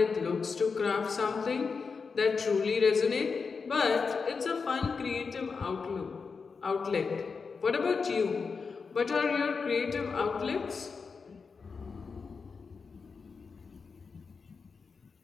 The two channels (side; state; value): right; quieter; 5.1 dB